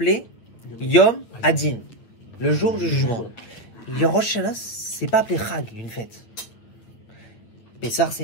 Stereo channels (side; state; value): right; late; 9.1 ms